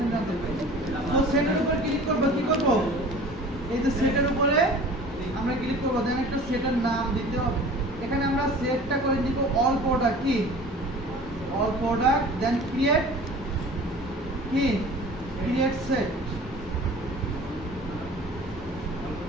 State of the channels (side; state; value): both; normal; correlation 0.44